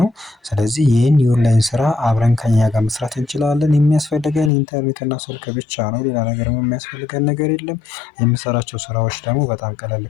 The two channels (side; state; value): right; drops out; at 4.5 s